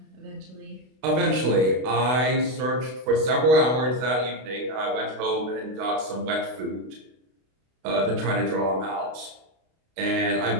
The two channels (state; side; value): late; left; 32 ms